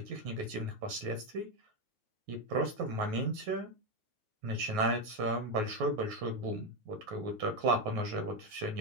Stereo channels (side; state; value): left; late; 9.4 ms